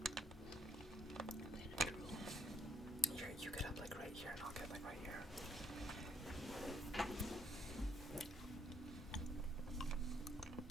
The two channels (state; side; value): normal; both; correlation 0.72